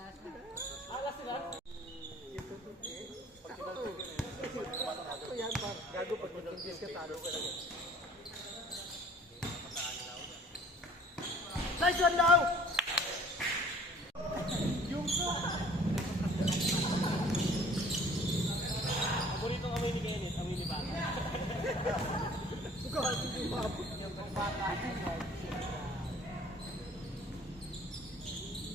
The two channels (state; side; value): normal; both; correlation 0.53